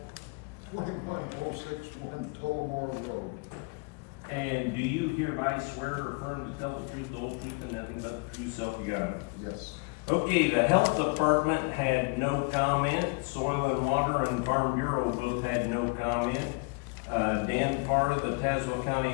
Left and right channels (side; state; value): right; quieter; 31.6 dB